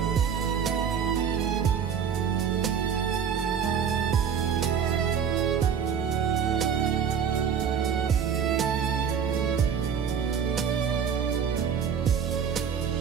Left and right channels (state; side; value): quieter; left; 7.5 dB